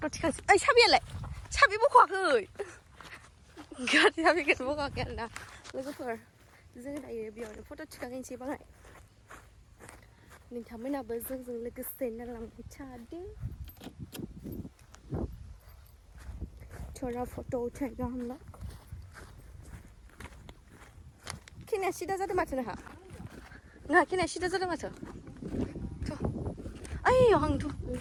थिखांसै ओइ साबियालाय साबि बख'वाखै गारि साबिखौनो बख'वाखै आरोना लोगोफोर जों दायो बेयावनो फट' थिखांहैनोसै बाङाय नोंथांमोनाबो जोंजों लोगोसे नायलांबाय थादो थोड़ा फट' उठाएगा हम लोग खिनाया सिदा जादों माथो नोंहा खिनाया सिदा जादों माथो थ' ओइयाव हांथ'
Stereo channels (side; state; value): both; identical; correlation 1.00